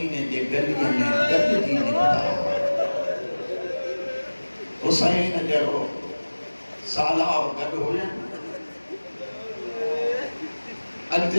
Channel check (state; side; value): inverted; both; correlation -1.00